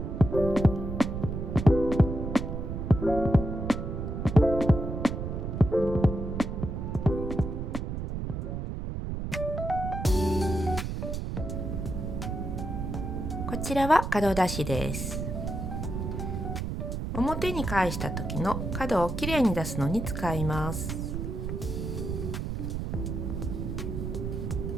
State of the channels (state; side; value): noise; right; rumble, 4 dB below the sound